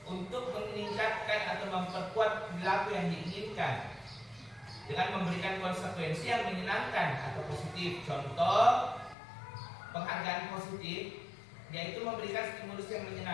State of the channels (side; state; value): right; drops out; at 9.2 s